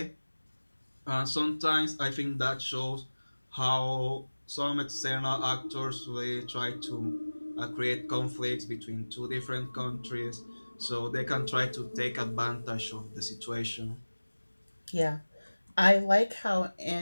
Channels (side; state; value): both; inverted; correlation -1.00